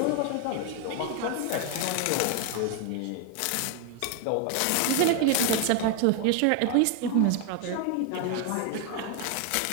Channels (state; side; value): different; both; correlation 0.01